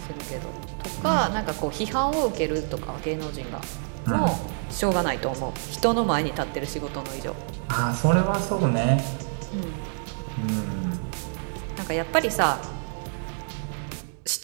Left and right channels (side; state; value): left; silent; digital silence